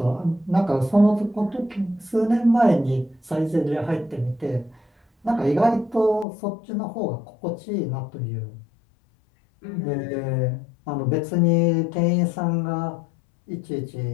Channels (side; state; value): right; drops out; at 6.2 s